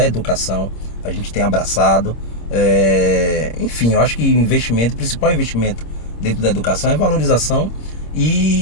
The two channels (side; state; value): right; late; 26 ms